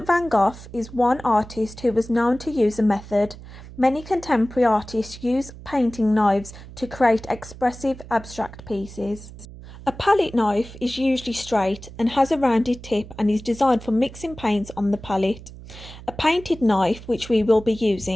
van Gogh is one artist who was known to use a method. Many contemporary artists use painting knives to create expressive abstract pieces. A palette knife is usually straight and has a rounded tip and is designed for mixing paints on the palette. A painted knife, which we will be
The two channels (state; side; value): noise; right; hum, 16 dB below the sound